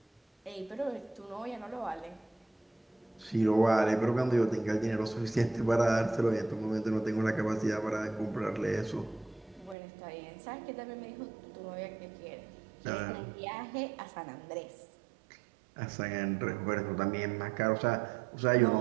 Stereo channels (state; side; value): drops out; left; at 9.8 s